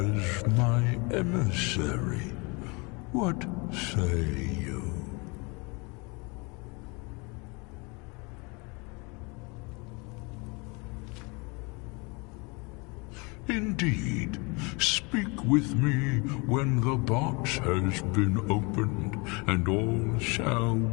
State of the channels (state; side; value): quieter; right; 29.1 dB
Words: my emissary. What say you? Indeed. Speak with me when the box has been opened, and all shall